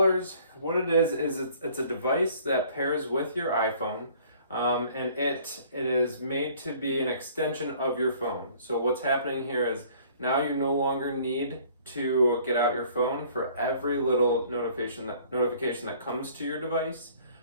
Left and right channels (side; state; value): both; inverted; correlation -0.55